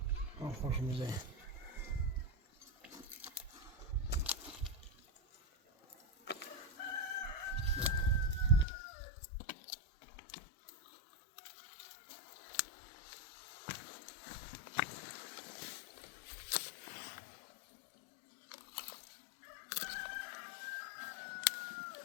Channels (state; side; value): drops out; right; at 8.7 s